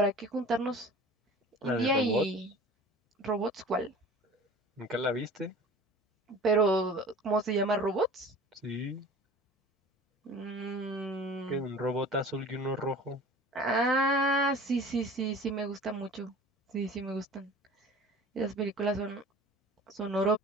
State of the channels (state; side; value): normal; both; correlation 0.42